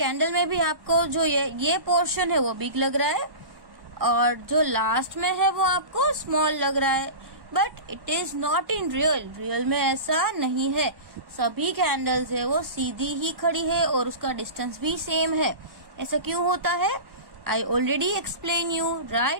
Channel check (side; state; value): left; late; 1.1 ms